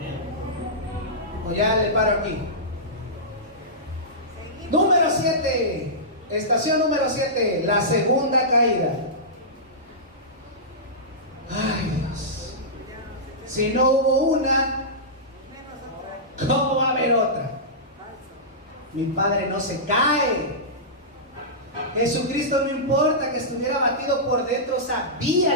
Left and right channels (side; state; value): both; normal; correlation -0.16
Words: O ya le paro aquí. Número 7. Estación número 7. La segunda caída. Ay, Dios. Si no hubo una, ¿cómo va a haber otra? Mi Padre no se cae. Jesucristo, no importa que estuviera abatido por dentro,